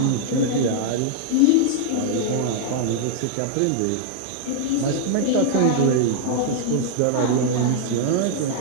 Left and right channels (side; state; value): both; different; correlation -0.01